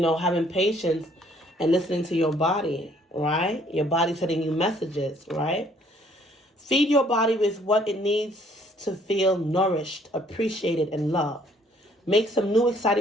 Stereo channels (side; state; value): both; normal; correlation 0.62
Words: patience and listening to your body, right? Your body sending you messages, right? Feed your body with what it needs to feel nourished, appreciated, and loved. Make some new